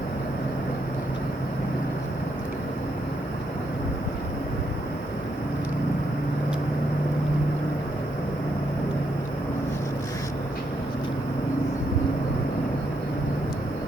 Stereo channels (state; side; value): normal; both; correlation 0.78